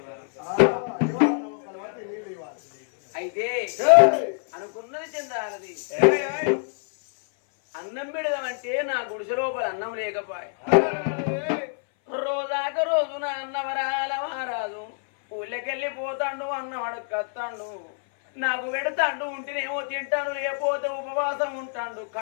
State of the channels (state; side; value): silent; right; 59 dB below the other